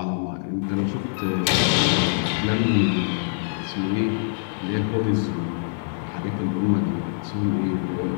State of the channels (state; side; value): silent; right; digital silence